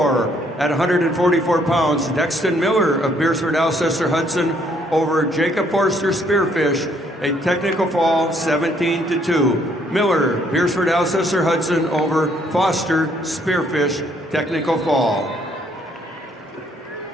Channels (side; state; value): both; normal; correlation 0.67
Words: at 144 pounds. Dexton Miller of Beersford, Alcester, Hudson over Jacob Forster Spearfish, a technical fall 17-2. Miller, Beersford, Alcester, Hudson over Foster Spearfish, technical fall.